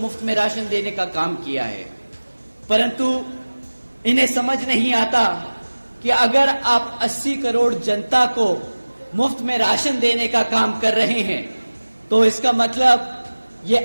में राशन देने का काम किया है, परंतु इन्हें समझ नहीं आता कि अगर आप 80 करोड़ जनता को मुफ्त में राशन देने का काम कर रहे हैं तो इसका मतलब ये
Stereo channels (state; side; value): inverted; both; correlation -1.00